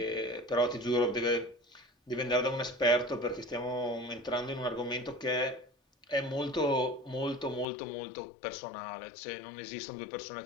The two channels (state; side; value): drops out; right; at 7.7 s